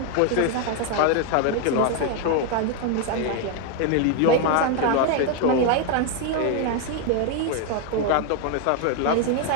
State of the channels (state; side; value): different; both; correlation 0.01